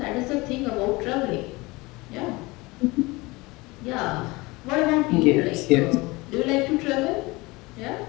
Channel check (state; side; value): quieter; right; 23.1 dB